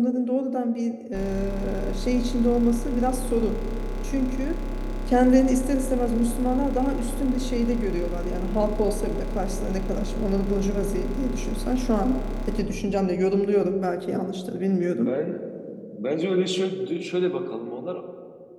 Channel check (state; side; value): identical; both; correlation 1.00